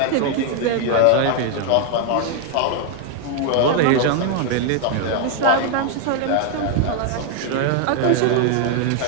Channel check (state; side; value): different; both; correlation 0.00